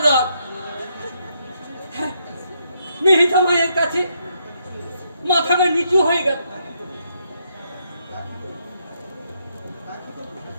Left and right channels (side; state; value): both; inverted; correlation -0.76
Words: রাগ। মেহিতা মায়ের কাছে মাথাটা নিচু হয়ে গেল।